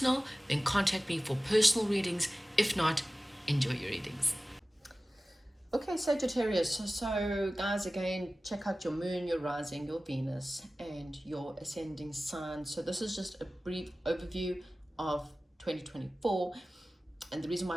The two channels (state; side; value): normal; both; correlation 0.96